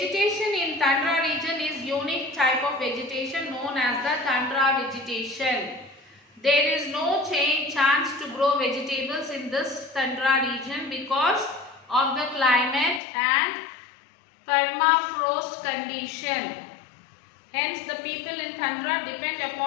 in tundra region is unique type of vegetation known as as the tundra vegetation. There is no chance to grow vegetables in this tundra region because of the climate and permafrost condition. Hence, the people in tundra depend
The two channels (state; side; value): drops out; right; at 13.0 s